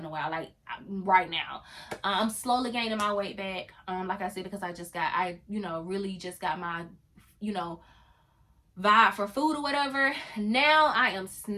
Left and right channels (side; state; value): both; identical; correlation 1.00